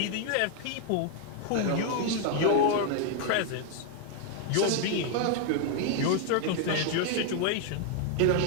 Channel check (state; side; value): different; both; correlation 0.00